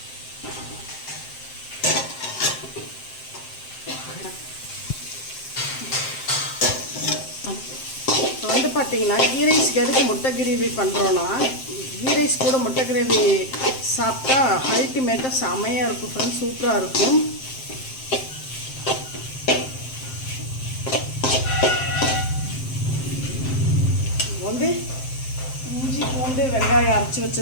இப்போ வந்து பார்த்தீங்கன்னா கீ ரைஸ்க்கு எதுக்கு முட்டை கிரேவி பண்ணுறோன்னா, கீ ரைஸ் கூட முட்டை கிரேவி சாப்பிட்டா அல்டிமேட்டாக செமையாக இருக்கும் ஃப்ரெண்ட்ஸ், சூப்பராக இருக்கும். வந்து இஞ்சி பூண்டு வெங்காயம் அரைச்சி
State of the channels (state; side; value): late; right; 7.7 ms